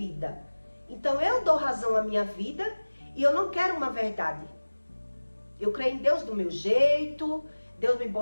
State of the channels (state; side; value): inverted; both; correlation -1.00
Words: então eu dou razão à minha vida e eu não quero uma verdade. Eu creio em Deus do meu jeito, Deus me